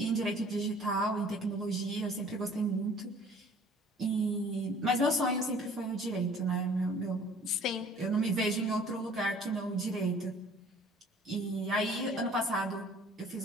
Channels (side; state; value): both; normal; correlation 0.52